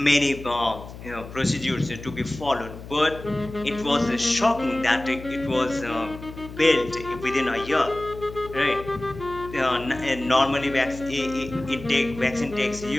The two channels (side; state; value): left; noise; hum, 14 dB below the sound